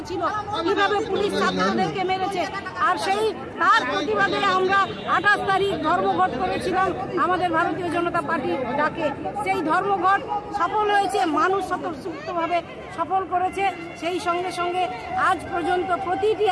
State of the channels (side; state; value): both; identical; correlation 1.00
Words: ছিল কিভাবে পুলিশ ছাত্রদেরকে মেরেছে। আর সেই তার প্রতিবাদে আমরা 28 তারিখ ধর্মঘট করেছিলাম আমাদের ভারতীয় জনতা পার্টির ডাকে। সেই ধর্মঘট সফল হয়েছে মানুষ স্বতঃস্ফূর্তভাবে সফল করেছে। সেই সঙ্গে সঙ্গে আজ পর্যন্ত প্রতিটি